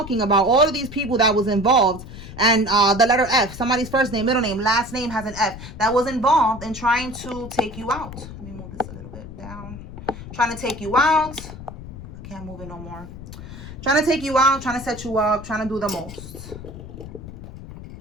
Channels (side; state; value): left; noise; rumble, 13 dB below the sound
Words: about all of these people that was involved, and the letter F, somebody's first name, middle name, last name has an F, that was involved in trying to take you out. Let me move this a little bit down. Trying to take you out. I can't move it no more. Trying to take you out, trying to set you up, trying to do the most.